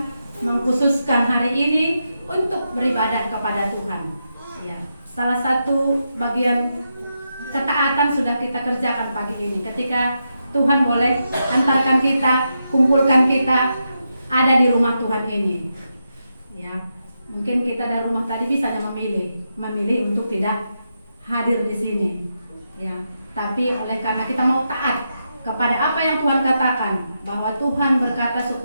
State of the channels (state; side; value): inverted; both; correlation -0.85